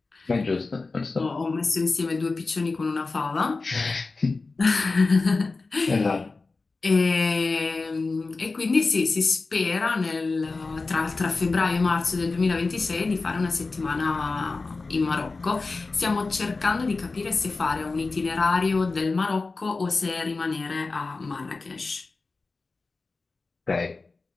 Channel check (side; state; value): right; quieter; 3.8 dB